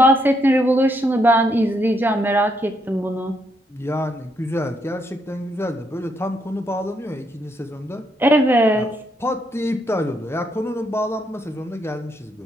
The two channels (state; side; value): normal; both; correlation 0.76